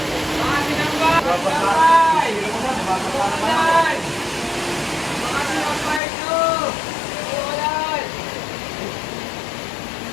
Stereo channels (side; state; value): right; drops out; at 6.0 s